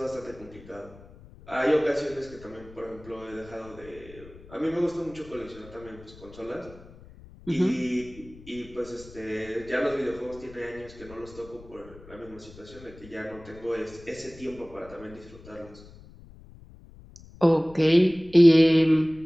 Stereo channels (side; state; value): left; noise; rumble, 20 dB below the sound